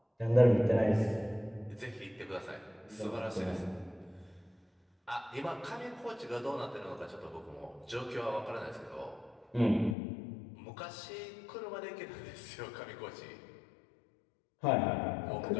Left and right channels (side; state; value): right; drops out; at 10.0 s